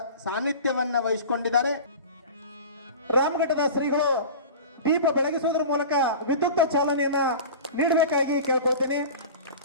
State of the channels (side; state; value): both; inverted; correlation -0.35